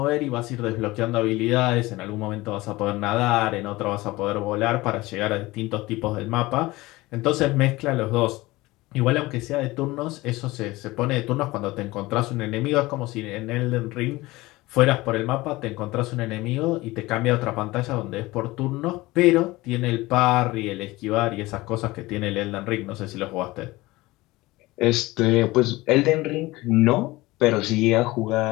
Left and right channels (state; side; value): quieter; right; 20.0 dB